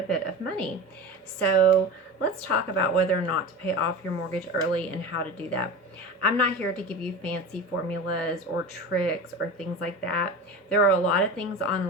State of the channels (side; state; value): both; normal; correlation 0.29